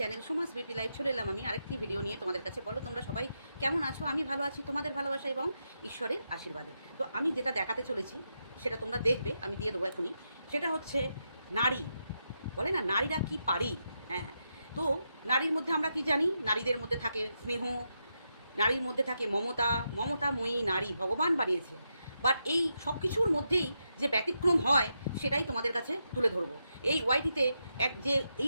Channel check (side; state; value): both; inverted; correlation -0.84